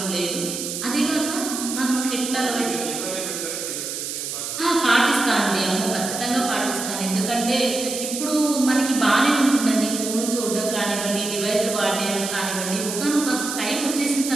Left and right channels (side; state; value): right; noise; hiss, 5 dB below the sound